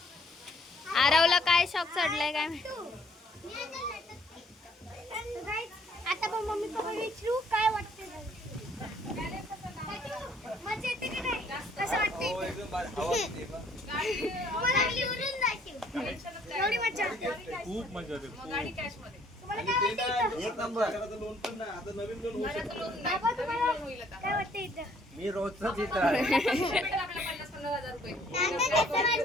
आरवला काय शॉक चढलाय काय माहिती. आता पण मम्मी पप्पा विचारू काय वाटते. मजा येते की नाही, कसं वाटते तुम्हाला. एवढी मजा, खूप मजा येते. तुम्हाला काय वाटते एक नंबर. लोन पण नाही, आता नवीन लोन होऊ शकतं. बाबा, तुम्हाला काय वाटते इथं? मी रोजच इथं आहे.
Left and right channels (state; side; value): normal; both; correlation 0.62